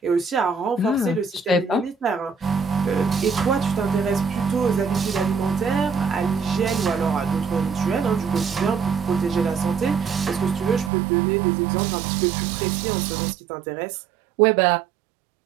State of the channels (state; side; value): drops out; left; at 10.9 s